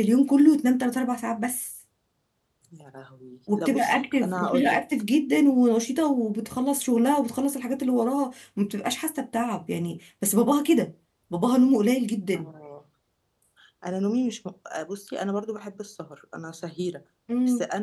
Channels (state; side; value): identical; both; correlation 1.00